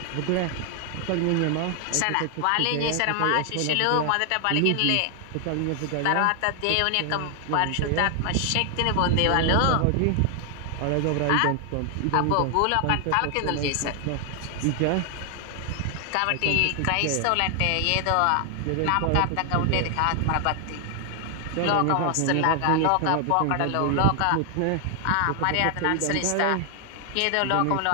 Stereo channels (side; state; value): both; different; correlation 0.00